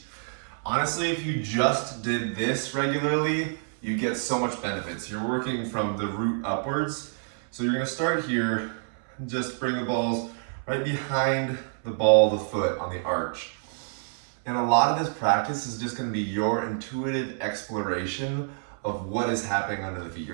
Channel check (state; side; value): silent; left; 60 dB below the other